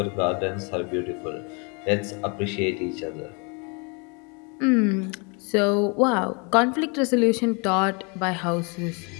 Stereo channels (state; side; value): quieter; right; 32.4 dB